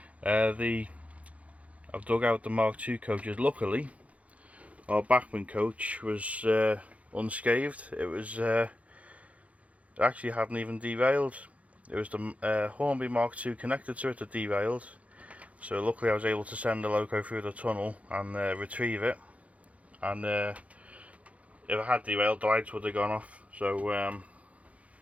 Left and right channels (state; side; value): late; left; 0.066 ms